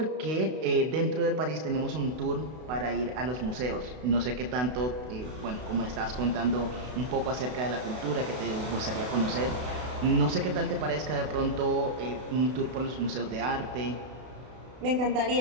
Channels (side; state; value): left; late; 32 ms